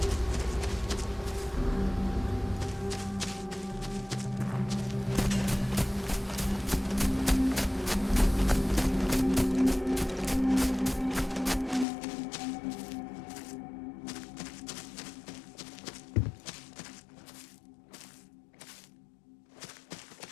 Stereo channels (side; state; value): right; drops out; at 11.9 s